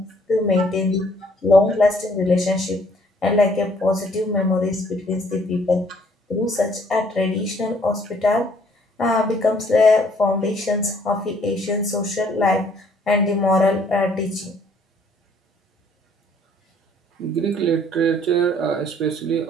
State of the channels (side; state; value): both; normal; correlation 0.62